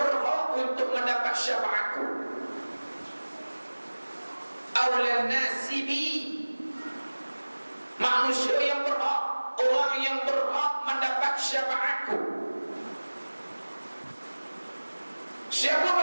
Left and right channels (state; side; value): inverted; both; correlation -1.00